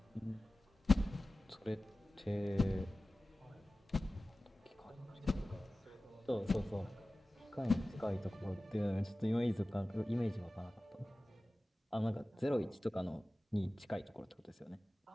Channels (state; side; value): normal; both; correlation 0.96